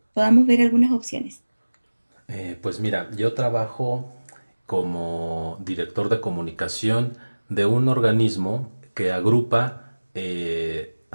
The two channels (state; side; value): inverted; both; correlation -1.00